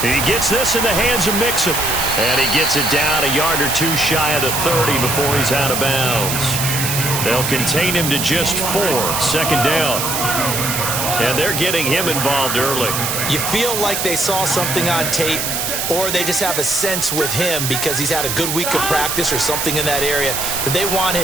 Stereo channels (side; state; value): right; noise; hiss, 1 dB below the sound